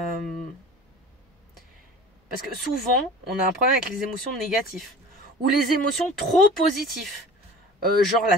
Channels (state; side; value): normal; both; correlation 0.40